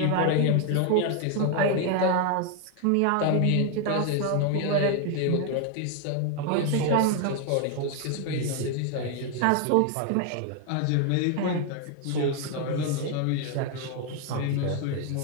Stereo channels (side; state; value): both; different; correlation 0.01